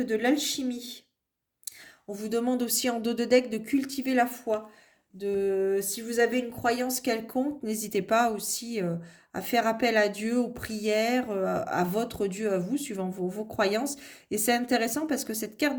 de l'alchimie. On vous demande aussi en dos de deck de cultiver la foi. Si vous avez une croyance quelconque, n'hésitez pas aussi à faire appel à Dieu, aux prières, à votre Dieu, à vous, suivant vos croyances. Et c'est intéressant parce que cette carte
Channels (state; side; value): identical; both; correlation 1.00